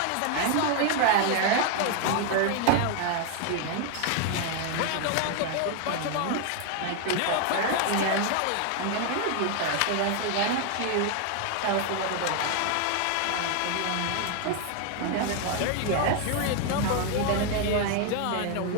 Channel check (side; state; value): both; different; correlation 0.01